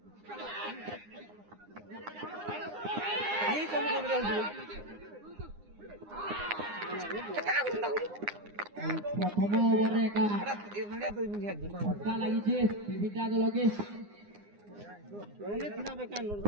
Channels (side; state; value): left; late; 9.7 ms